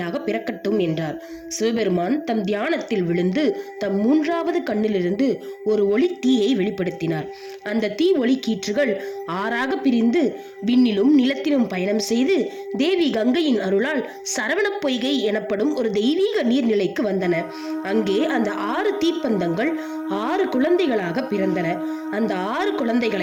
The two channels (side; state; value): both; identical; correlation 1.00